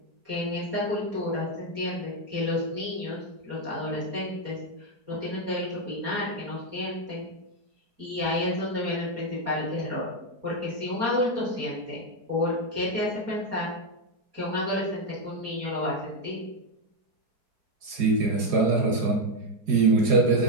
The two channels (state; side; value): late; left; 4.8 ms